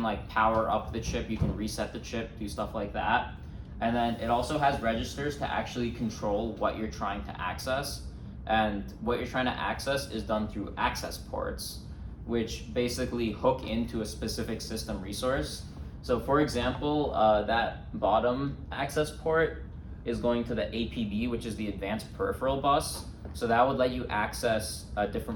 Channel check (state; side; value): identical; both; correlation 1.00